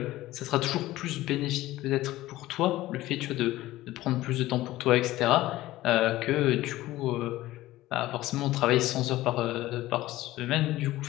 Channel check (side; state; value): right; quieter; 16.5 dB